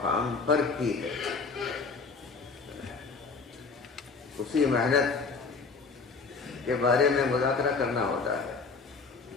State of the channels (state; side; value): quieter; right; 4.5 dB